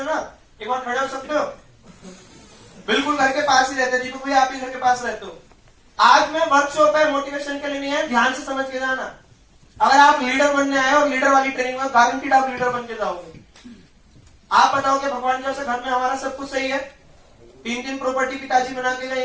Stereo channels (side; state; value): both; identical; correlation 1.00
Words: हो ना, एक बार खड़े हो सकते हो? बिल्कुल घर के पास ही रहते। दीपक भाई आप ही घर के पास रहते हो। आज मैं वर्कशॉप है, मोटिवेशन के लिए नहीं है, ध्यान से समझ के जाना। अगर आप लीडर बनने आए और लीडर वाली ट्रेनिंग में, गारंटीड आप लीडर बन के जाओगे। आप बताओगे भगवान की वजह से घर में हमारा सब कुछ सही है, 3 प्रॉपर्टी पिताजी बना के